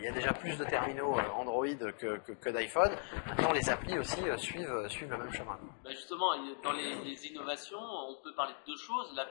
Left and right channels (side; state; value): right; silent; 52 dB below the other